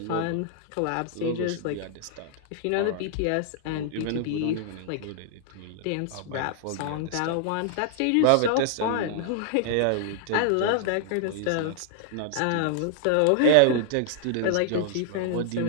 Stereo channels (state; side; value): different; both; correlation -0.01